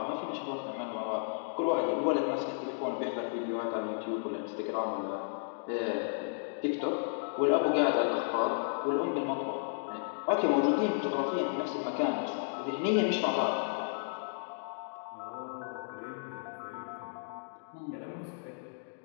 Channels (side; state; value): right; silent; digital silence